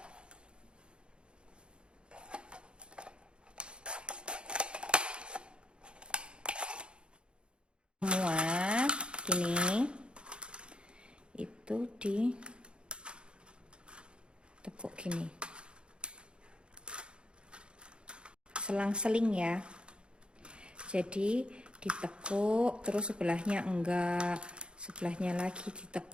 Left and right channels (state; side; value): late; left; 0.054 ms